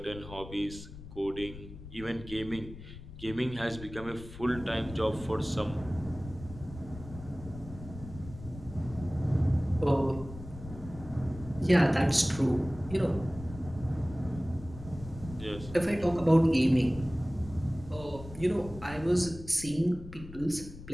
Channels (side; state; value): left; noise; rumble, 14 dB below the sound